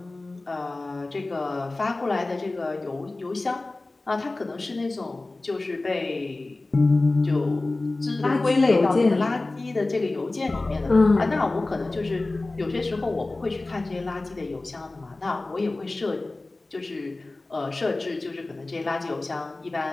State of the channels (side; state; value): right; quieter; 3.1 dB